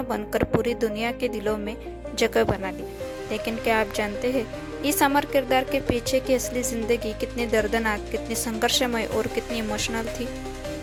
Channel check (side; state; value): both; identical; correlation 1.00